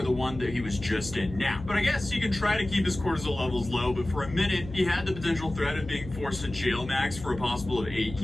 the one that he was just in now. But I guess he can try to keep his cortisol levels low, but for a minute, he had the potential threat of being forced to jail max for a possible of 8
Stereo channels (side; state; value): left; noise; hum, 12 dB below the sound